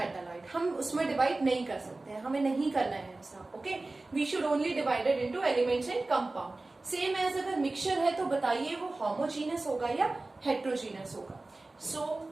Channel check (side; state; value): left; quieter; 3.1 dB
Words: हम उसमें डिवाइड नहीं कर सकते हैं, हमें नहीं करना है ऐसा. Okay, we should only divided into elements and compound. Same as अगर मिक्सचर है तो बताइए वो होमोजीनियस होगा या हेट्रोजीनियस होगा. So